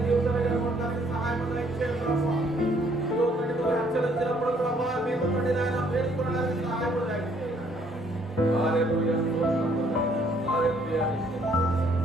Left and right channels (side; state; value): both; normal; correlation 0.65